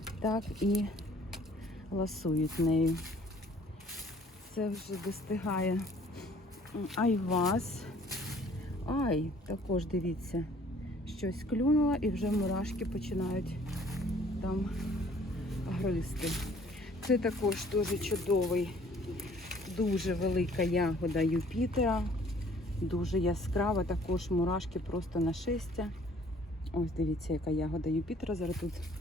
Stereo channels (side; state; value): both; normal; correlation 0.57